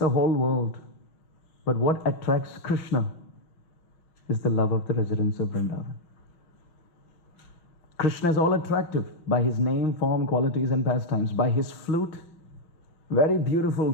whole world, but what attracts Krishna is the love of the residents of Vrindavan. Krishna is all attractive by his name, form, qualities and pastimes, by his flute, very beautiful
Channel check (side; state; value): right; late; 6.0 ms